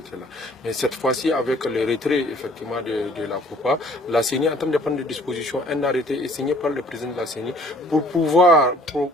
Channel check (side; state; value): both; normal; correlation 0.57